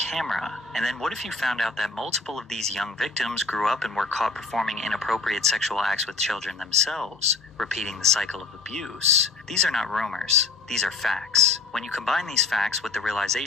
And then what if you found out that multiple of these young victims grew up and were caught performing inappropriate sexual acts with children themselves, repeating the cycle of abuse? These are not rumors. These are facts. When you combine these facts with the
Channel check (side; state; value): right; quieter; 4.1 dB